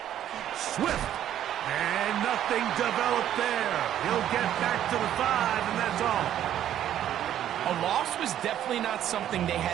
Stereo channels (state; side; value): quieter; left; 11.1 dB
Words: Swift. And nothing developed there. He'll get back to the 5, and that's all. A loss was definitely not something they